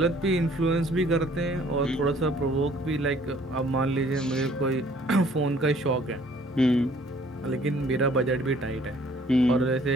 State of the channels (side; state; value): both; normal; correlation 0.58